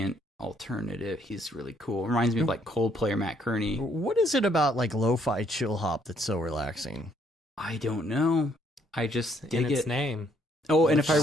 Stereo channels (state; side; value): normal; both; correlation 0.68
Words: alternative. He's really cool. Reminds me of like Coldplay or Matt Kearney. What is it about like lo-fi chill hop that's so relaxing? I don't know. I just In dig its it. name. Oh, and if